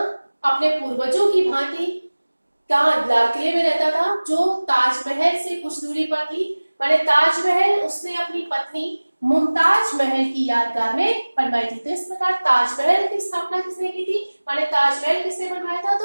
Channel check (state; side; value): inverted; both; correlation -1.00